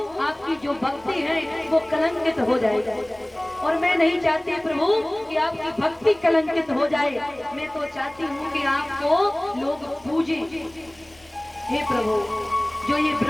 आपकी जो भक्ति है वो कलंकित हो जाएगी और मैं नहीं चाहती प्रभु कि आपकी भक्ति कलंकित हो जाए। मैं तो चाहती हूँ कि आपको लोग पूजे। हे प्रभु, जो ये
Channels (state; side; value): noise; left; rumble, 30 dB below the sound